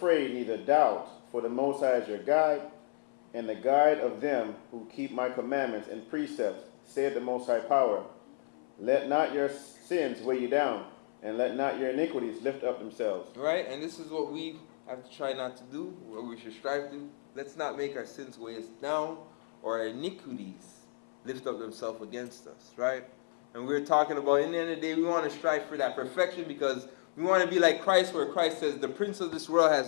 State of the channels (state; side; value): silent; right; 56 dB below the other